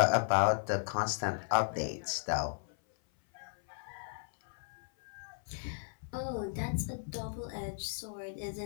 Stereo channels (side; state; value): right; silent; 54 dB below the other